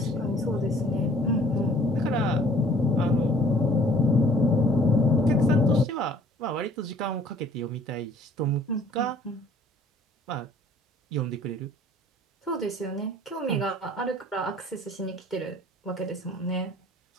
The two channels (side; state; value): both; normal; correlation 0.55